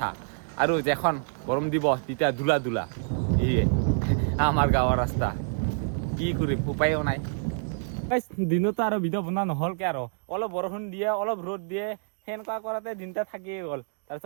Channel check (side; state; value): left; silent; digital silence